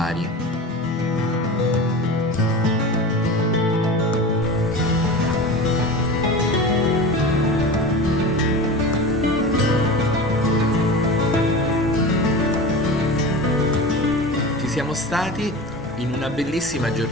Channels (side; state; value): both; normal; correlation 0.31